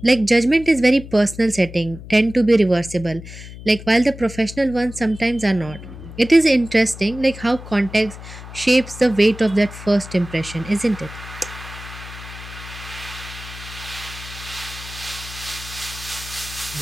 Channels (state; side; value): noise; left; hum, 14 dB below the sound